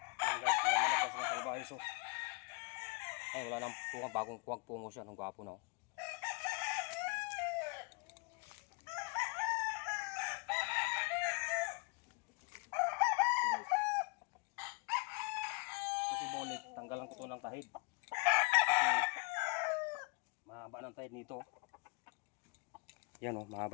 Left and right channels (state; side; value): quieter; right; 30.6 dB